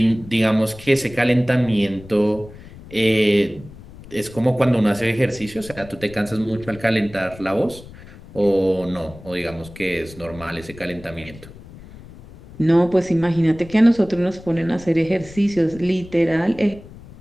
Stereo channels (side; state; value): left; noise; rumble, 18 dB below the sound